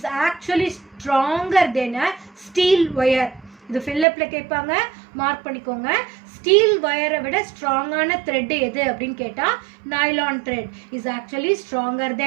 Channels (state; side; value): drops out; left; at 4.0 s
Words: actually stronger than a steel wire. இது ஃபில்லப்பில் கேட்பாங்க, மார்க் பண்ணிக்கோங்க. ஸ்டீல் ஒயரை விட ஸ்ட்ராங்கான த்ரெட் எது அப்படின்னு கேட்டால் nylon thread is actually stronger